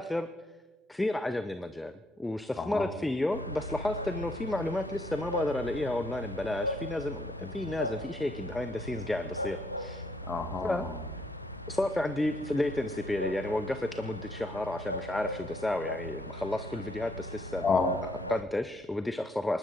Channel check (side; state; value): both; normal; correlation 0.70